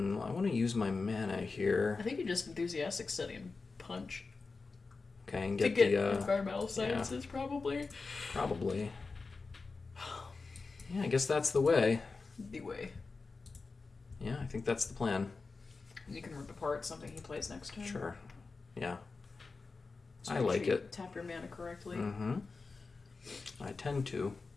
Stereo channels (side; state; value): right; quieter; 4.2 dB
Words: to use my mana here. I think you just enthusiastic study and punch. Okay, and To get get the... environmental sciences, probably. Probably. Yeah, I guess that's the way. The way. Yeah, I think that's the plan. You can rip apart something he plays next turn. Sure. Yeah. So I make like sure you it. Tap your mana correctly. Mm-hmm. I tend to.